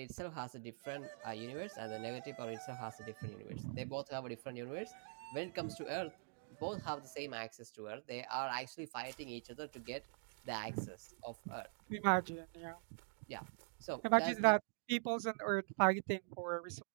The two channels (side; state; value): left; silent; digital silence